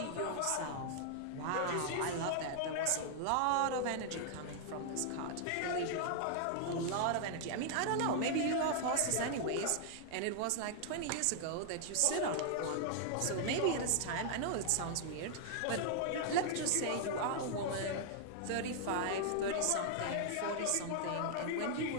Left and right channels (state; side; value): different; both; correlation 0.00